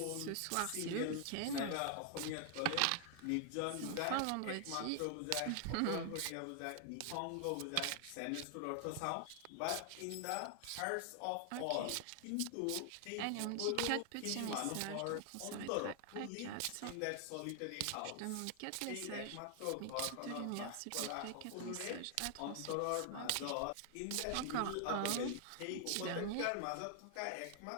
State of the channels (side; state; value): both; different; correlation 0.00